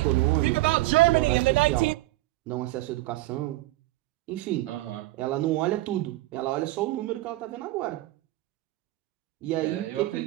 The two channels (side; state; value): left; quieter; 18.3 dB